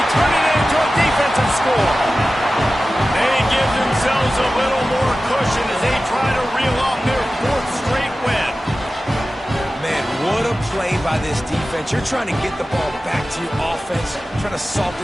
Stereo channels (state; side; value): normal; both; correlation 0.95